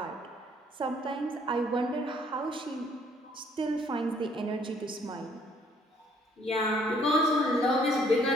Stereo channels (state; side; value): normal; both; correlation 0.63